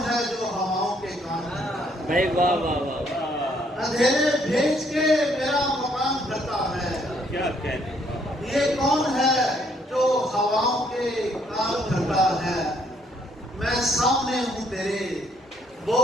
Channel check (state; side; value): normal; both; correlation 0.68